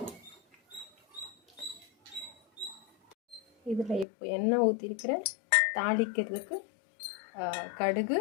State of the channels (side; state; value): right; drops out; at 4.0 s